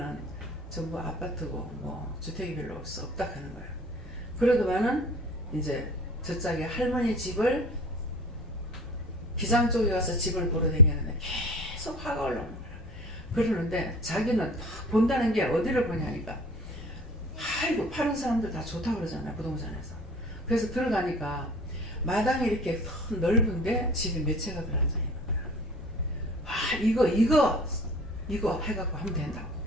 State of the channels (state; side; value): normal; both; correlation 0.43